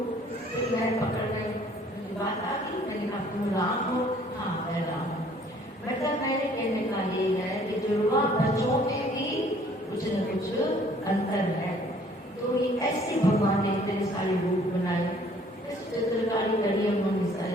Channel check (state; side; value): normal; both; correlation 0.58